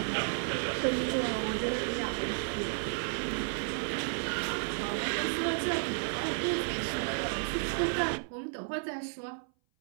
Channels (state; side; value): silent; left; 56 dB below the other